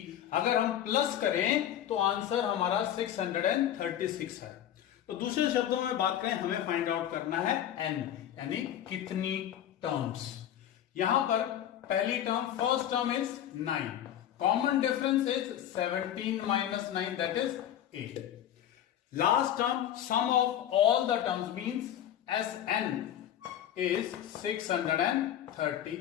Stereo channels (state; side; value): quieter; right; 11.0 dB